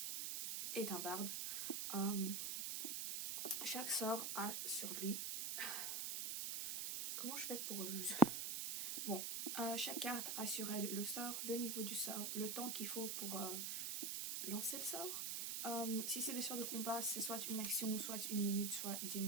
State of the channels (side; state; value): right; noise; hiss, 2 dB below the sound